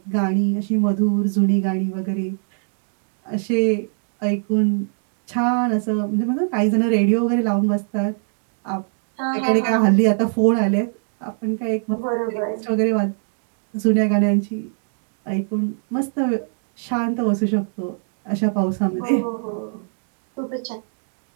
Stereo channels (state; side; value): silent; left; digital silence